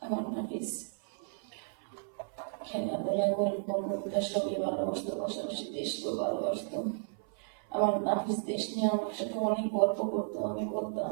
আমার নাফিস খেলাধুলা গল্প কবিতা সবই ভালোবাসতো, পাশাপাশি দেশকেও ভালোবাসতো। আমার নাফিস দেশ নিয়ে আমার সাথে অনেক গল্প করতো। আমি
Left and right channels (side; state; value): left; silent; 55 dB below the other